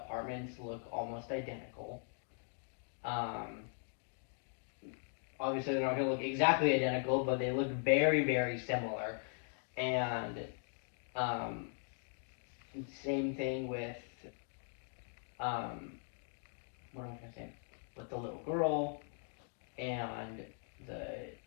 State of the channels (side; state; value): right; silent; 51 dB below the other